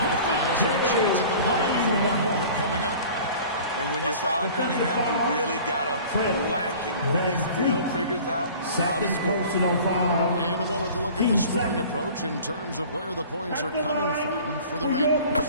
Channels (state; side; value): inverted; both; correlation -0.44